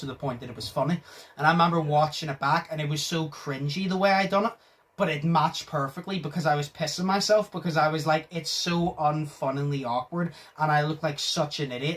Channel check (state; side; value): identical; both; correlation 1.00